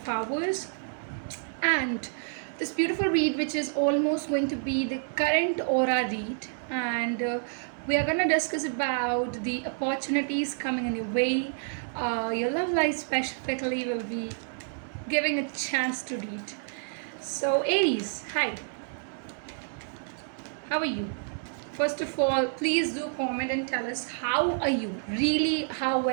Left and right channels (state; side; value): silent; left; 59 dB below the other